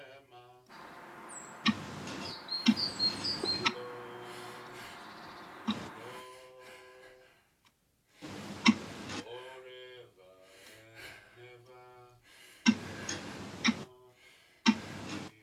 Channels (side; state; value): both; identical; correlation 1.00